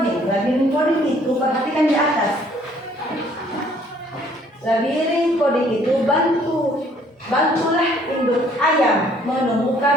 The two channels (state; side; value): normal; both; correlation 0.61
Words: Labirin coding itu perhatikan di atas. Labirin coding itu bantulah induk ayam